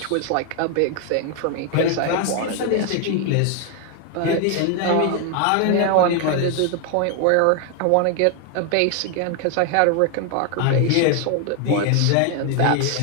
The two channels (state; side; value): different; both; correlation 0.00